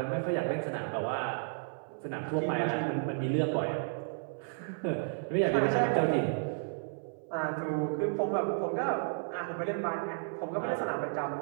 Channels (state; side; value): silent; left; 56 dB below the other